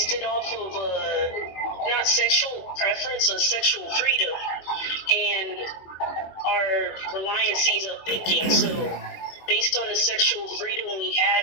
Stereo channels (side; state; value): right; late; 21 ms